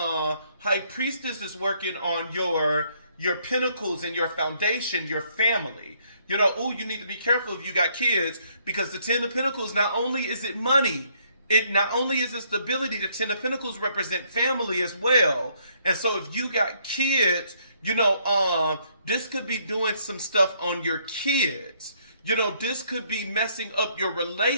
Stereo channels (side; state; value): both; inverted; correlation -0.69